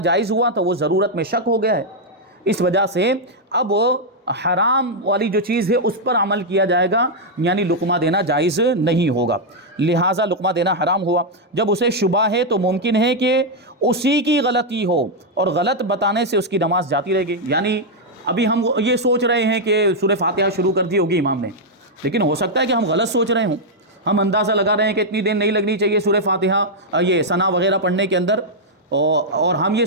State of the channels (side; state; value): both; normal; correlation -0.02